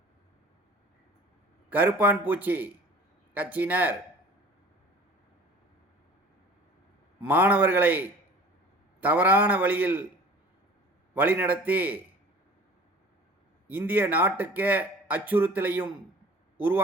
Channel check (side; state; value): both; normal; correlation 0.46